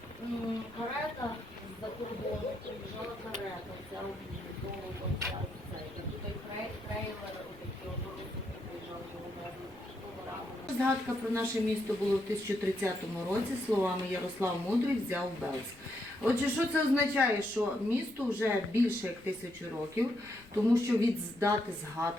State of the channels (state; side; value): noise; left; rumble, 24 dB below the sound